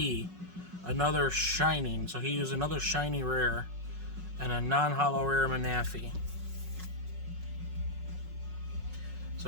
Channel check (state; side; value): late; left; 5.4 ms